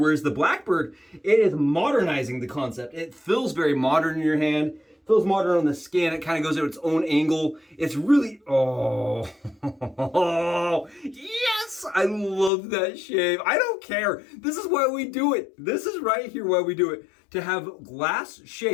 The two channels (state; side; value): drops out; right; at 12.5 s